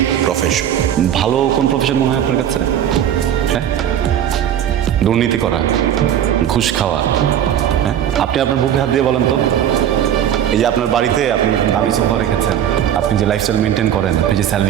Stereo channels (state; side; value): quieter; left; 10.2 dB